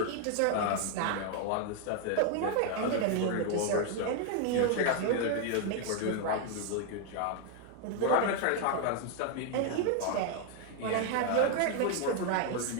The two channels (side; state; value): both; different; correlation 0.01